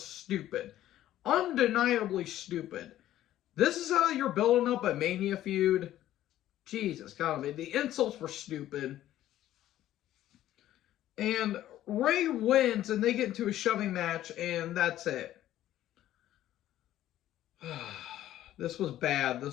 stupid. Undeniably stupid. This is how you're building up a Mania feud? Jesus, God, the insults were stupid. And Ray wins, and they get into a shoving match, and that's it. This was bad.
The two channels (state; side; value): quieter; right; 13.2 dB